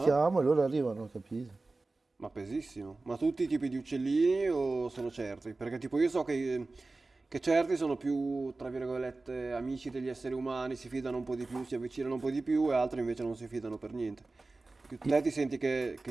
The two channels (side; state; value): left; quieter; 3.4 dB